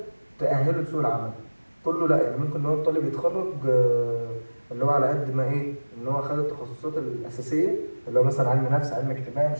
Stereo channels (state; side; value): inverted; both; correlation -1.00